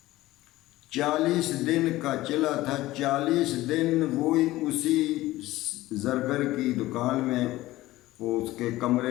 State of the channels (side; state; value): right; quieter; 17.1 dB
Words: 40 دن کا چلا تھا، 40 دن وہی اسی زرگر کی دکان میں، وہ اس کے